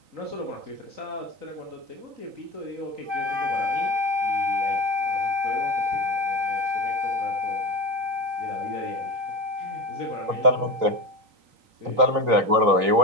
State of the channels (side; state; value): left; late; 3.9 ms